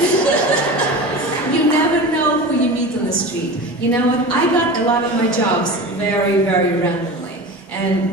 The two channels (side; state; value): both; normal; correlation 0.31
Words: you never know who you meet on the street. You know what, I got a lot of my jobs very, very randomly.